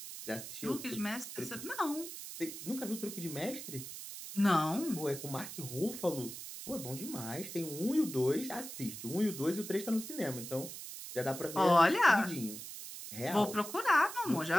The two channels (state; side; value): noise; right; hiss, 10 dB below the sound